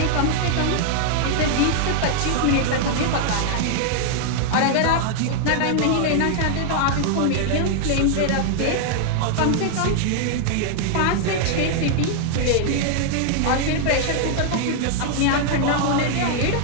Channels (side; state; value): both; different; correlation 0.00